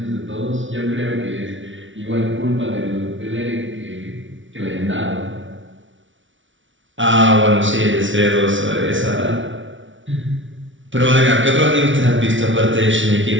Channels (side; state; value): left; late; 0.56 ms